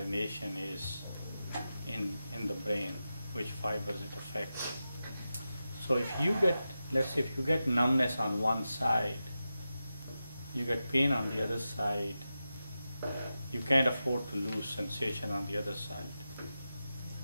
is in the brain, which fibers it affects. So if you get, let's say if you get numbness on one side, you get pain on the other side, you can't afford to lose sensation on the other side.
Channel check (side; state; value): both; inverted; correlation -0.92